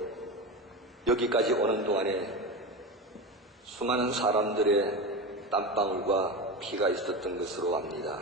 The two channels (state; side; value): normal; both; correlation 0.23